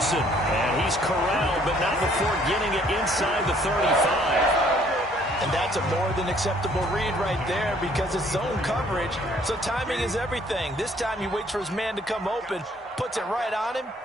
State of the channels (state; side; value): normal; both; correlation 0.61